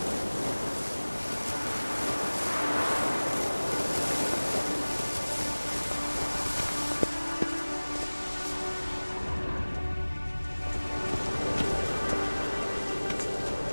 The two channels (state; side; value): inverted; both; correlation -1.00